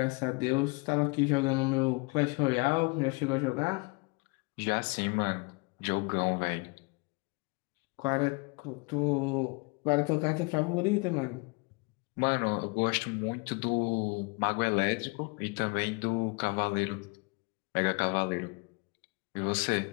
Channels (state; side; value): quieter; right; 30.1 dB